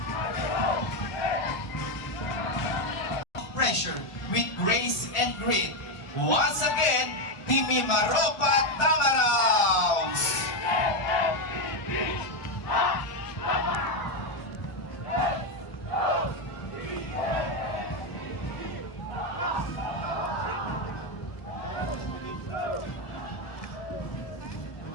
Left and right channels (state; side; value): late; right; 1.4 ms